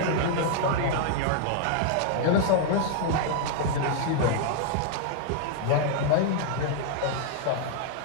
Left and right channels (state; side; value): different; both; correlation 0.00